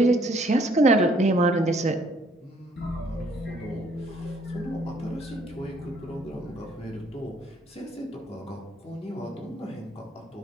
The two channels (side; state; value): both; normal; correlation 0.64